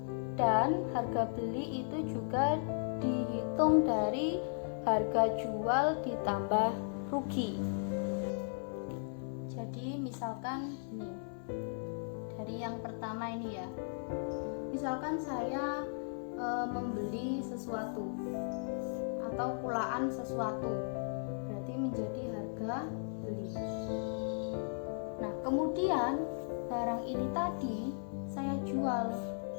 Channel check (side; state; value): right; silent; 54 dB below the other